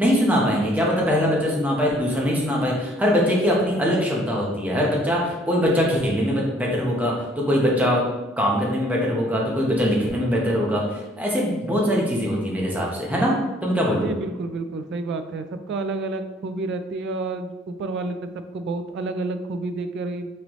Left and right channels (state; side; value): normal; both; correlation 0.60